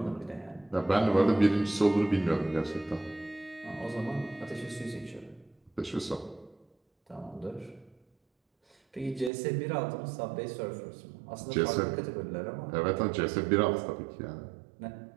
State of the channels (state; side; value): drops out; left; at 9.3 s